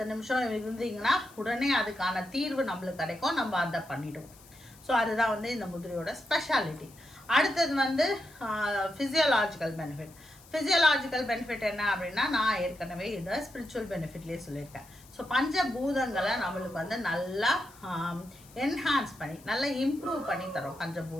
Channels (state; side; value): noise; left; hiss, 24 dB below the sound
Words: நிமிஷம் இருந்தீங்கன்னா உடனே அதுக்கான தீர்வு நம்மளுக்கு கிடைக்கும். நம்ம அதை பண்ணிடுவோம். ஸோ அதுதான் வந்து இந்த முதிரையோட ஸ்பெஷாலிட்டி. அடுத்தது வந்து ஃபிசியலாஜிக்கல் பெனிஃபிட். ஃபிசியலாஜிக்கல் பெனிஃபிட் என்ன அப்படின்னா நான் ஏற்கனவே இதை ஸ்பிரிச்சுவல் பெனிஃபிட்லேயே சொல்லியிருக்கேன். ஸோ பஞ்சபூதங்களை நம்மளுக்கு வந்து நல்லா என்ஹான்ஸ் பண்ணி நல்லா இம்ப்ரூவ் பண்ணி தரோம்